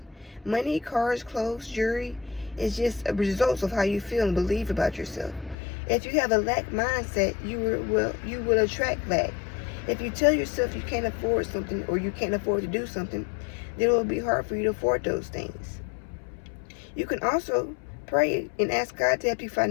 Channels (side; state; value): right; drops out; at 5.6 s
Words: Money, cars, clothes, jewelry is just a result of how you feel and believe about yourself. If you have a lack mindset, you will attract lack. If you tell yourself you can't afford something or you can't afford to do something, then it will be hard for you to afford those things. You can also pray and ask God to help you